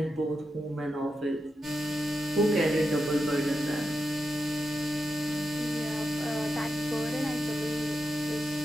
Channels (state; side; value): normal; both; correlation 0.88